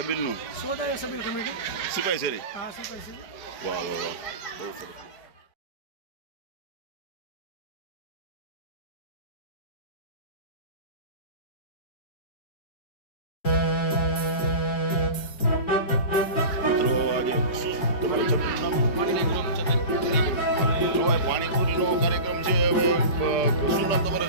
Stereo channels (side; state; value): right; late; 4.5 ms